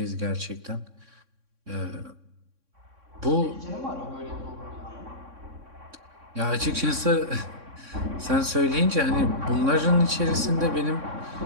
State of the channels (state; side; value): late; left; 3.6 ms